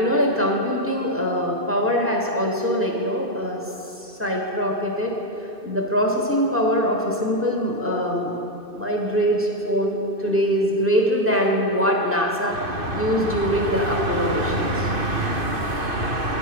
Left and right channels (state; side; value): late; left; 2.6 ms